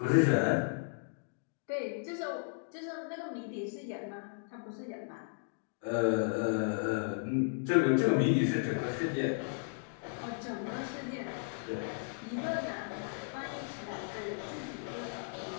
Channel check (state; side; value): silent; right; digital silence